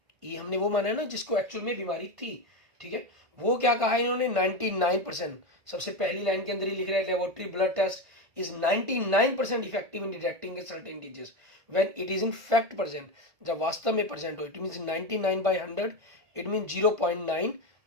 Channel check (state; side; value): late; left; 1.5 ms